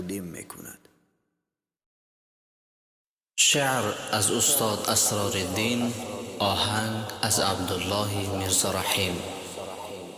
میکند. شعر از استاد اسرارالدین، آهنگ از عبدالله میرزا رحیم.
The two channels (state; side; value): identical; both; correlation 1.00